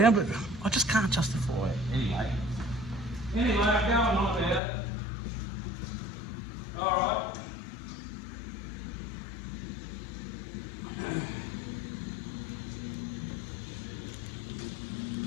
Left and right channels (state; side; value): drops out; right; at 4.6 s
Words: but I just can't justify it. Anyway, I'm going on about it. All right.